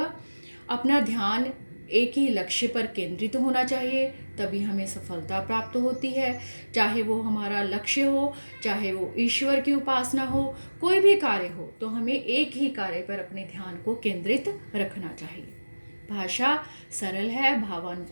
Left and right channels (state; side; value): inverted; both; correlation -1.00